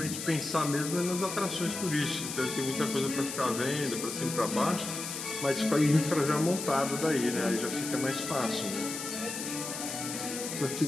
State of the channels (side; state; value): left; noise; hiss, 6 dB below the sound